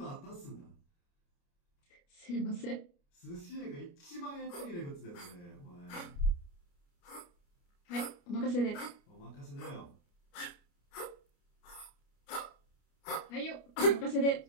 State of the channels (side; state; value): right; late; 29 ms